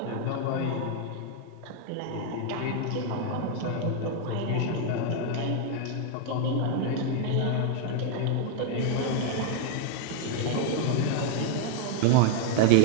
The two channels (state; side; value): different; both; correlation 0.00